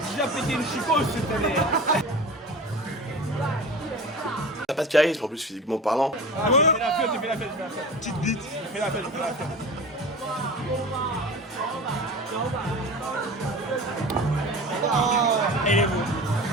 j'ai déjà pété une chicose cette année. T'as pas de charisme en plus physiquement parlant. Ah, j'ai fait la fête, j'ai fait la fête. Petite bite. J'ai fait la fête, j'ai fait la fête. Oh, elle est beau.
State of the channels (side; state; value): both; normal; correlation 0.35